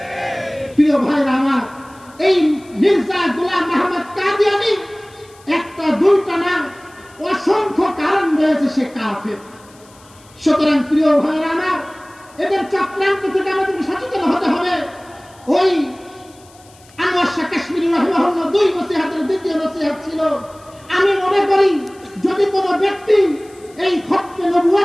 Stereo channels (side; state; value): left; noise; hiss, 27 dB below the sound